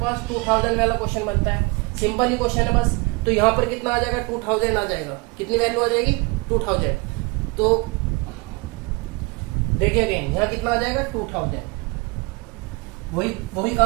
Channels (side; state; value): left; quieter; 27.8 dB